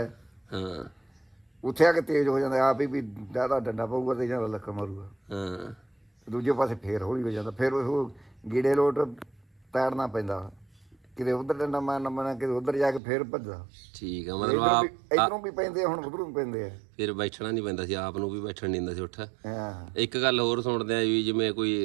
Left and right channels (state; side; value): drops out; left; at 13.0 s